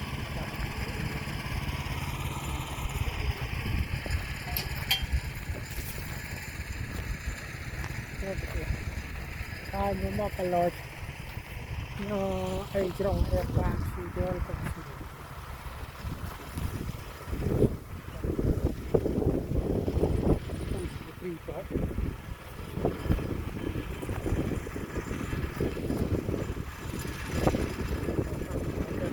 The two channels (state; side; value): identical; both; correlation 1.00